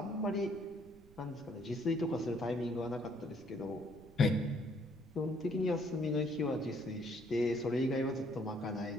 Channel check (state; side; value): noise; right; rumble, 23 dB below the sound